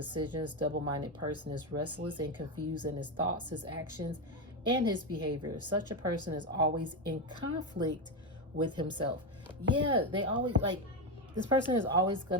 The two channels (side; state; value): both; normal; correlation 0.11